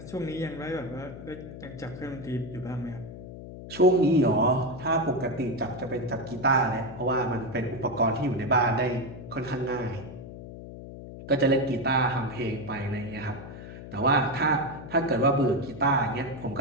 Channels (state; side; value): noise; left; hum, 13 dB below the sound